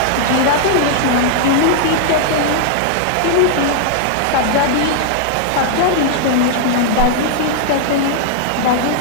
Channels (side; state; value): both; different; correlation -0.01